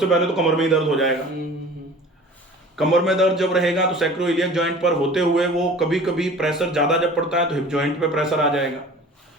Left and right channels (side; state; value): both; normal; correlation 0.44